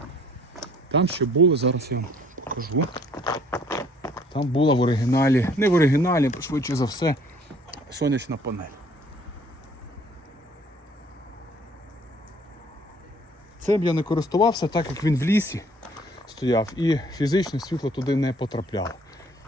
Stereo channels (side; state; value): both; normal; correlation 0.58